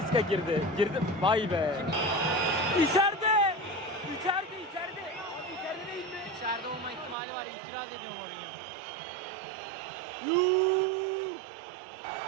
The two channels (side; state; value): left; drops out; at 7.2 s